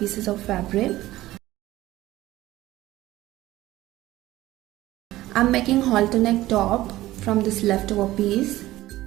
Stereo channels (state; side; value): quieter; left; 16.3 dB